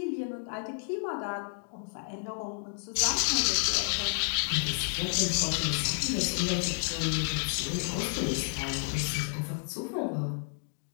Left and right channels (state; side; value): silent; right; 57 dB below the other